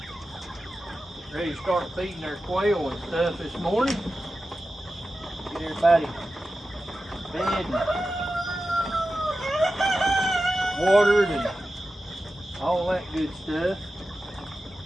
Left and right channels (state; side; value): normal; both; correlation 0.93